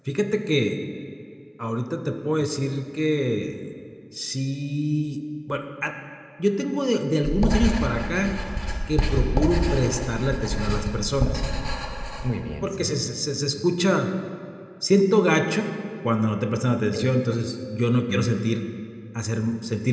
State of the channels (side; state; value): both; identical; correlation 1.00